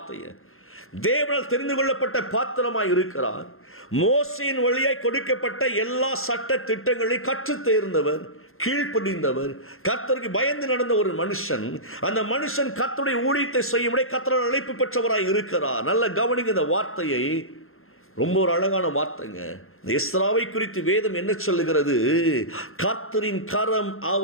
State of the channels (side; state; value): right; late; 0.61 ms